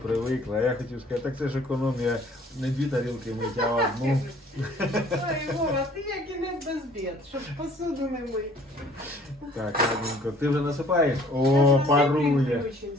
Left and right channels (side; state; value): both; normal; correlation 0.55